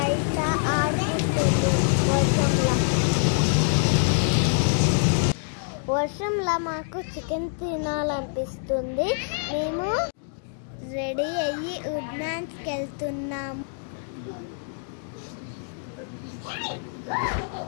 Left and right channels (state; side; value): silent; right; digital silence